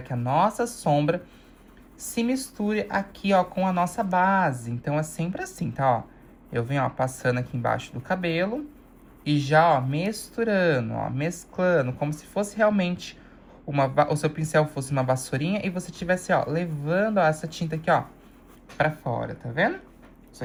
a nossa sombra se misture aqui, ó, com a nossa base. Então, é sempre assim, tá, ó? Eu venho, ó, passando aqui embaixo do cabelo e já, ó, misturando, ó, mesclando, como se fosse realmente o seu pincel fosse uma vassourinha e você tivesse, ó, levando, ó, essa tinta aqui, ó, pra fora, tá vendo? Isso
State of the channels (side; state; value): both; identical; correlation 1.00